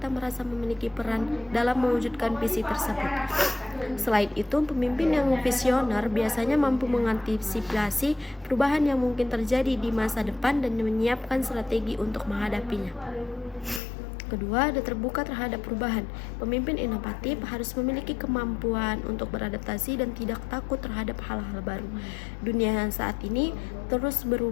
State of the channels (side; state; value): right; drops out; at 13.8 s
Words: merasa memiliki peran dalam mewujudkan visi tersebut. Selain itu, pemimpin yang visioner biasanya mampu mengantisipasi perubahan yang mungkin terjadi di masa depan dan menyiapkan strategi untuk menghadapinya. Kedua, ada terbuka terhadap perubahan. Pemimpin inovatif harus memiliki kemampuan untuk beradaptasi dan tidak takut terhadap hal-hal baru. Dunia saat ini terus